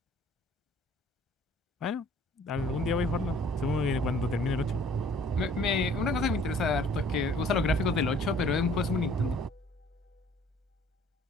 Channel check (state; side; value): normal; both; correlation 0.55